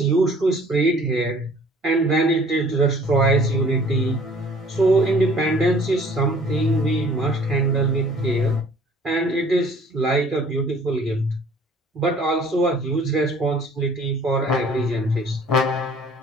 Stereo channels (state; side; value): normal; both; correlation 0.53